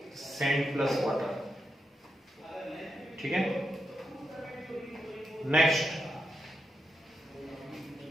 sand plus water, ठीक है। Next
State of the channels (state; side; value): normal; both; correlation 0.85